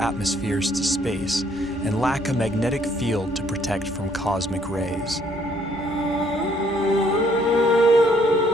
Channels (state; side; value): normal; both; correlation 0.66